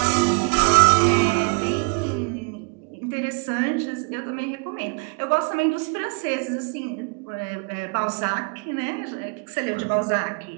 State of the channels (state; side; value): quieter; left; 34.8 dB